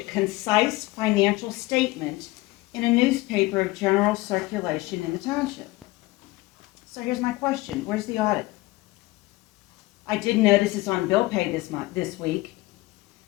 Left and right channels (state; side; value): quieter; right; 20.3 dB